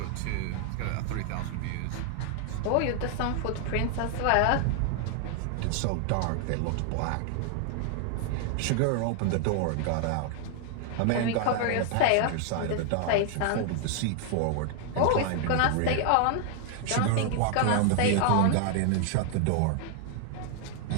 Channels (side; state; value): both; different; correlation 0.00